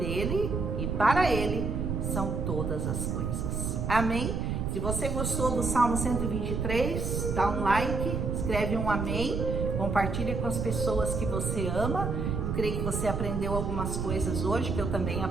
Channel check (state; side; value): noise; right; rumble, 1 dB below the sound